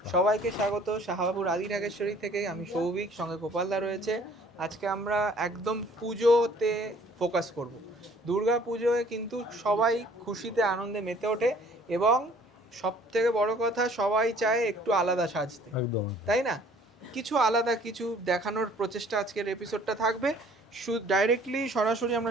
সবাইকে স্বাগত শাহবাবুর আদি নাগেশ্বরী থেকে। আমি সৌভিক, সঙ্গে গোপালদা রয়েছে। আজকে আমরা একদম পুজোতে ফোকাস করব। দুর্গা পুজোয় কিন্তু সবাই খুশিতে আনন্দে মেতে ওঠে এবং সব থেকে বড় কথা, সবাই চায় একটু আলাদা সাজতে, একদম তাই না? কিছু আলাদা কিছু দেখানোর প্রচেষ্টা আজকের এপিসোডটা থাকবে। ডাইরেক্টলি সরাসরি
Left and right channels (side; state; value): both; normal; correlation 0.56